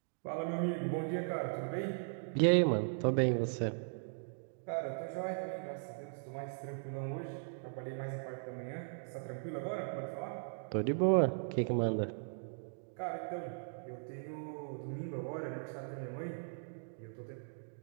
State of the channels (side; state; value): left; silent; digital silence